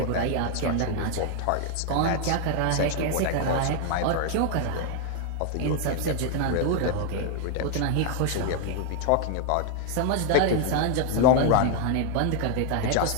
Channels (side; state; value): both; different; correlation 0.00